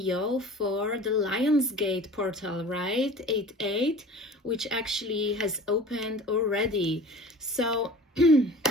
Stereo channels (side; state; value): both; normal; correlation 0.42